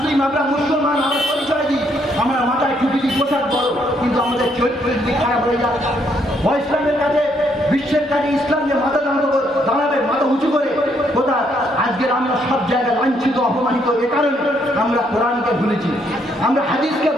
আমরা মুসলমান, আমরা পরিচয় দিই, আমরা মাথায় টুপি দিই, পোশাক বড়, কিন্তু আমাদের চরিত্রের দিক খারাপ হয়ে যায়। ইসলামের কাছে বিশ্বের কাছে ইসলাম যে মাথা দাঁড়াবে মাথা উঁচু করে কোথায়? আজকের আমরা সব জায়গায় লাঞ্ছিত অপমানিত। এ কারণে আমরা কোরআনকে ভুলেছি, আমরা হাদিসকে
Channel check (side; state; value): both; normal; correlation 0.71